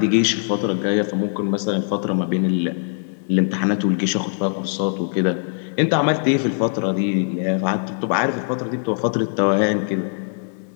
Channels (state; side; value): silent; right; 65 dB below the other